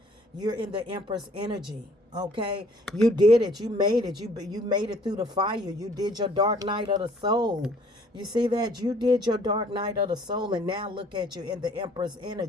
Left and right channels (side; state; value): both; normal; correlation 0.58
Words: You're in the Empress energy. Okay, you did it. You made it. You made it through the fire. You did your dark night of the soul. You see that? You did your dark night of the soul, and now look at you in the Empress